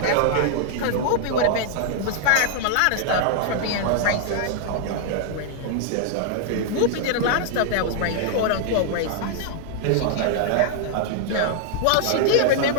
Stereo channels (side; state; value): both; different; correlation -0.01